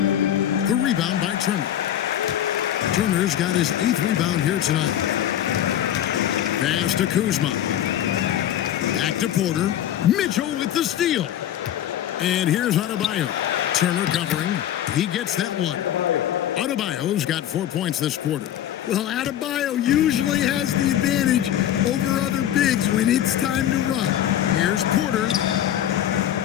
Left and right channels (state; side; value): quieter; right; 11.2 dB